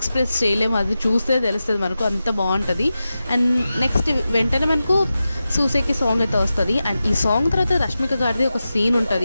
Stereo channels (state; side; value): inverted; both; correlation -0.92